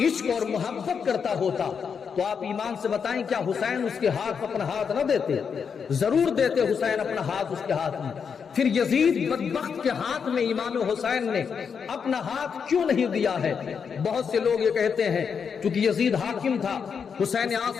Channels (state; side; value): quieter; right; 6.5 dB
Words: عشق اور محبت کرتا ہوتا تو آپ ایمان سے بتائیں کیا حسین اس کے ہاتھ اپنا ہاتھ نہ دیتے؟ ضرور دیتے حسین اپنا ہاتھ اس کے ہاتھ میں۔ پھر یزید بدبخت کے ہاتھ میں امام حسین نے اپنا ہاتھ کیوں نہیں دیا ہے؟ بہت سے لوگ یہ کہتے ہیں کیونکہ یزید حاکم تھا، حسین